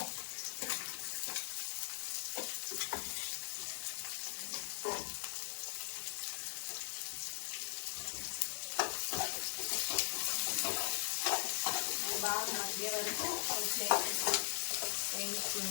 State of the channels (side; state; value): right; silent; digital silence